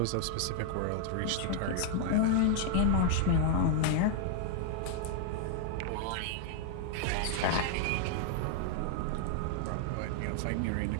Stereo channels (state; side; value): different; both; correlation 0.00